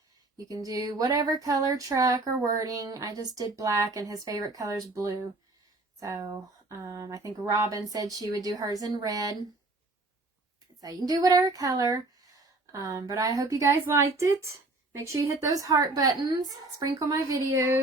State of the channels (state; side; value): quieter; left; 3.0 dB